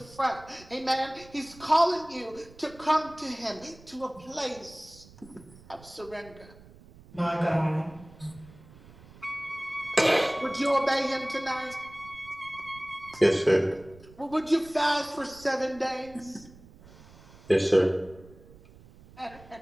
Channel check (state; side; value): noise; right; rumble, 22 dB below the sound